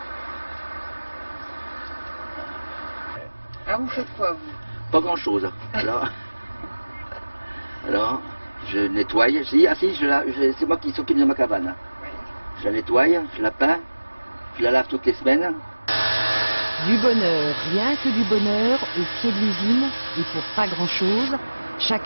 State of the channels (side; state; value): both; inverted; correlation -1.00